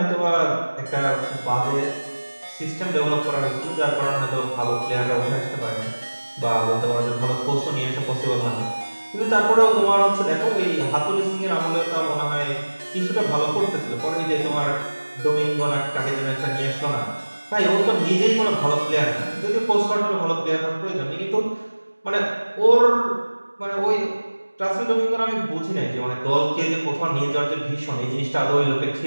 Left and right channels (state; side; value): inverted; both; correlation -1.00